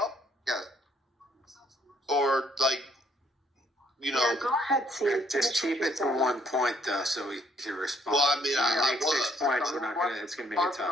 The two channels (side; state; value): both; normal; correlation 0.67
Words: Yes. Or, Yeah, go ahead, C. Just keep it to one point, though, so we can respond. Well, I mean, I make 6 points. It's going to make it tough.